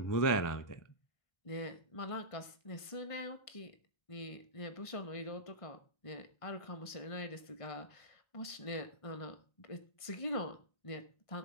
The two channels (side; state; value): right; late; 1.5 ms